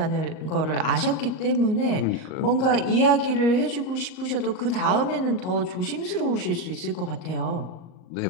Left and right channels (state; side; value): late; right; 38 ms